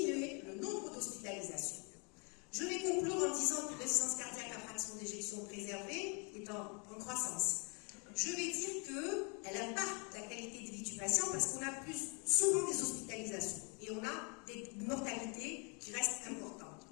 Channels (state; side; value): quieter; right; 34.9 dB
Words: le nombre d'hospitalisations. Je vais conclure en disant que l'insuffisance cardiaque à fraction d'éjection préservée est en croissance. Je vais dire qu'elle impacte la qualité de vie du patient parce qu'on a plus souvent des hospitalisations et on a des mortalités qui restent importantes.